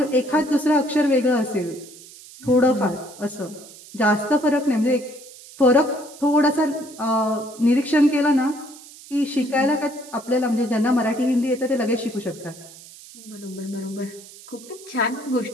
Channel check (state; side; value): noise; right; hiss, 19 dB below the sound